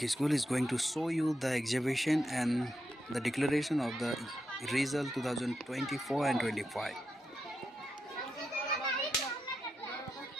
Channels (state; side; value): normal; both; correlation 0.86